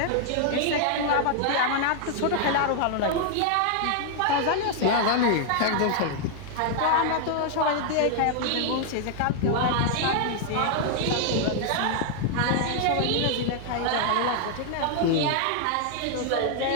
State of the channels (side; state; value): both; different; correlation -0.01